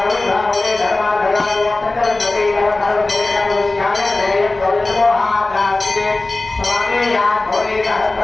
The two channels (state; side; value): quieter; right; 3.1 dB